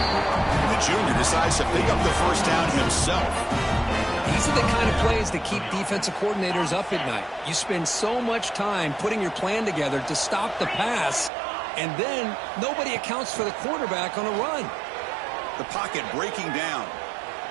the junior decides to pick up the first down himself. These are the kind of plays that keep defensive coordinators up at night. You spend so much time putting your plan together to stop the pass, and then nobody accounts for the quarterback on a run. The pocket breaking down.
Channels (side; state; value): left; drops out; at 11.3 s